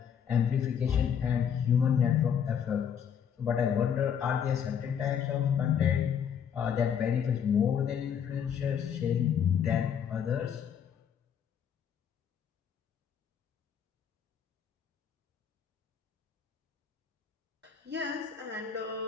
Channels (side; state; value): right; quieter; 8.0 dB